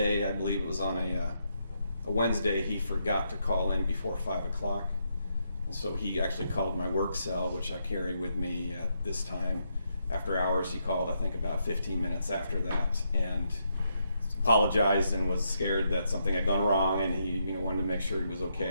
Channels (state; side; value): inverted; both; correlation -0.78